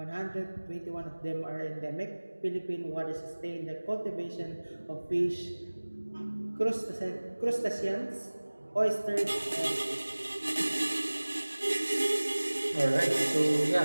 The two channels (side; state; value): both; inverted; correlation -1.00